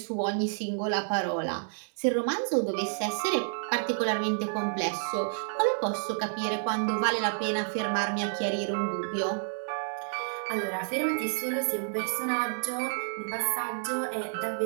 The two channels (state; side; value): silent; left; digital silence